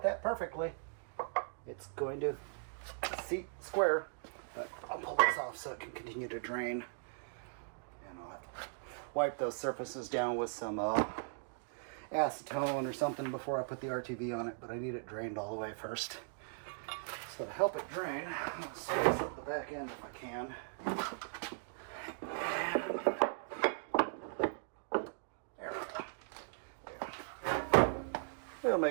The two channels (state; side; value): silent; left; digital silence